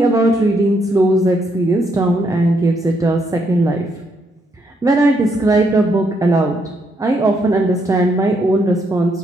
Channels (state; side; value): normal; both; correlation 0.75